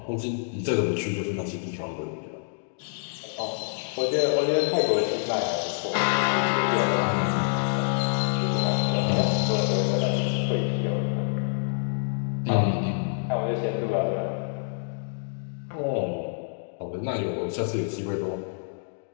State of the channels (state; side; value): silent; right; digital silence